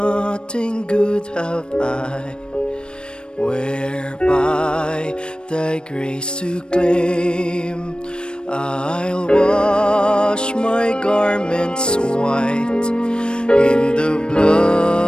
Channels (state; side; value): late; right; 0.053 ms